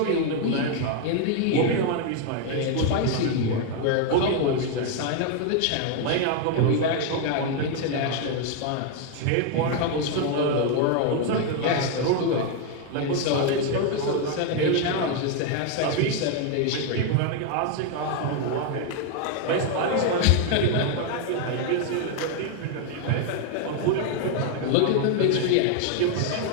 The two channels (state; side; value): different; both; correlation 0.01